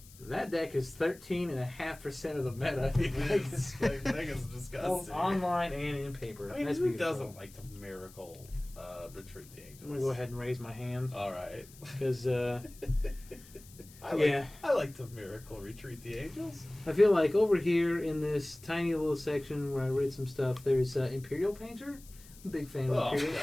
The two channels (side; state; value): left; noise; hiss, 22 dB below the sound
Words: that deck is 13.5% of the meta. Vegas is disgusting. Both online and in paper. I mean, That's who beautiful. doesn't like to Miracle Retreat the Angels? I'm gonna go ahead and raise my hand All right. because I like to Miracle Retreat the Angels. I feel like over here in this tiny little section where I read some stuff, there's Imperial Painter. I'm a big fan of Imperial